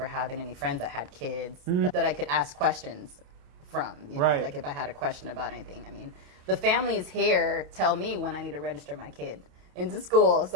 having any friends that had kids that I could ask questions from. You know, Right. like if I had a question about anything. I mean, the families here tell me when I need to register my kid into school.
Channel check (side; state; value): left; late; 28 ms